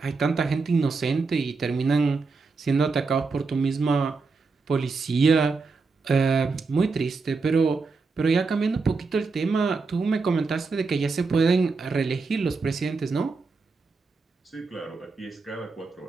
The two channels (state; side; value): quieter; left; 4.3 dB